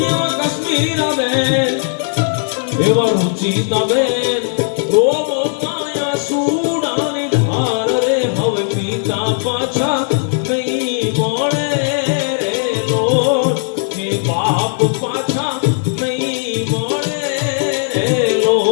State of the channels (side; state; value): right; silent; digital silence